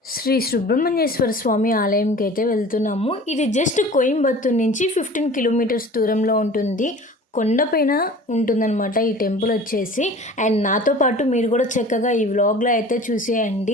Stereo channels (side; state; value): both; normal; correlation 0.42